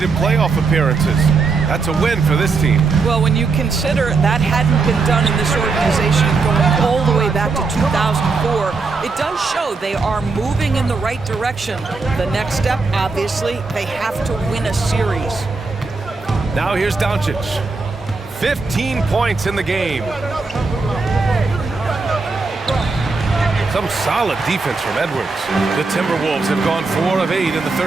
playoff appearances. That's a win for this team. Well, when you consider that hadn't been done in this organization going all the way back to 2004, it does show they are moving in the right direction. The next step, obviously, they have to win a series. Now here's Doncic. 15 points in the game. Some solid defense from Edwards. The Timberwolves have gone 4 of 8 in the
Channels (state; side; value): quieter; left; 4.2 dB